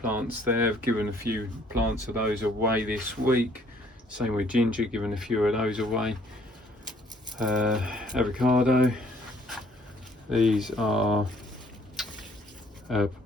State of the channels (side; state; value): both; normal; correlation 0.62